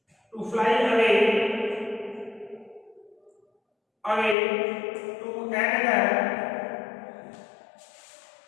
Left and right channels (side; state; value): right; drops out; at 4.4 s